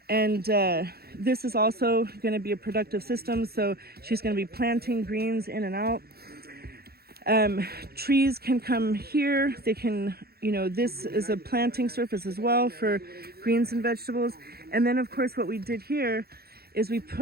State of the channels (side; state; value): left; late; 0.45 ms